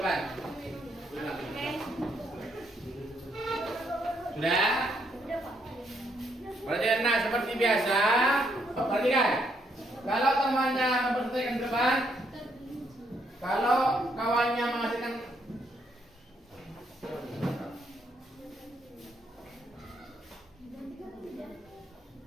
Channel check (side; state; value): both; normal; correlation 0.73